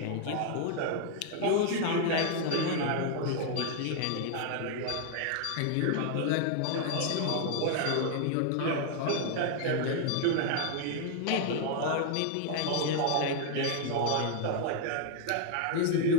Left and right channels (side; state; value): both; different; correlation 0.00